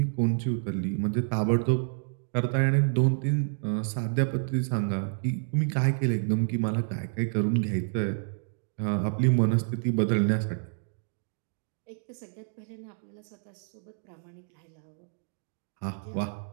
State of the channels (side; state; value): left; silent; digital silence